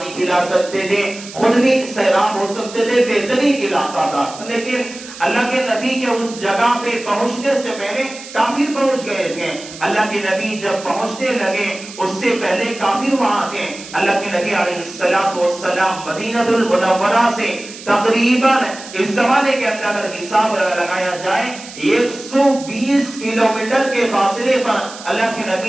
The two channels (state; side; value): noise; right; hiss, 15 dB below the sound